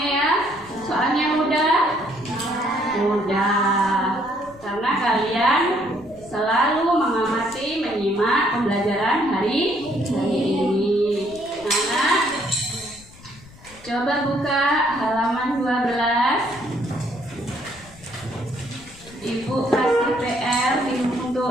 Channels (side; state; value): left; noise; rumble, 22 dB below the sound